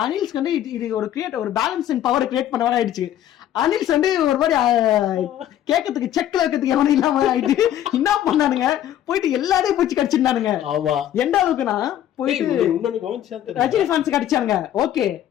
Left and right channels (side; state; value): right; quieter; 11.6 dB